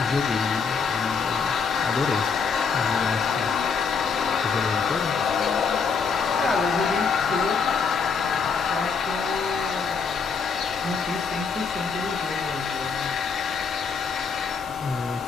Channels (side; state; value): right; quieter; 5.6 dB